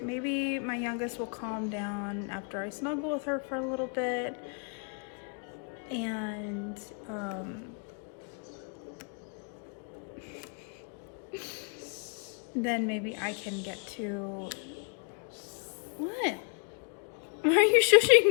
Maybe my youngest will calm down after I snuggle with her for a little bit, and then maybe I can get to... What? Why are you shushing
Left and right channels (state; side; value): quieter; right; 39.9 dB